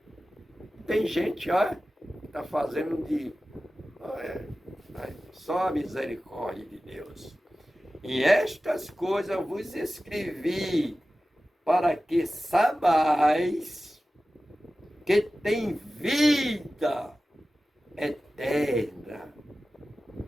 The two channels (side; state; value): both; normal; correlation 0.95